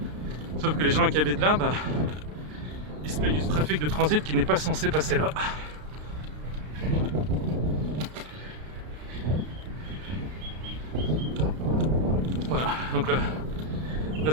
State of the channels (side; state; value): left; late; 33 ms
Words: Sauf que les gens qui habitent là, bah, ils se payent du trafic de transit qui n'est pas censé passer là. Voilà, donc la